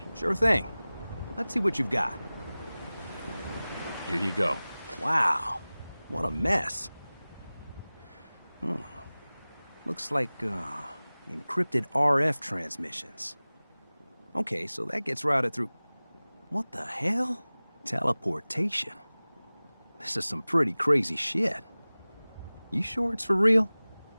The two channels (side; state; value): both; inverted; correlation -0.99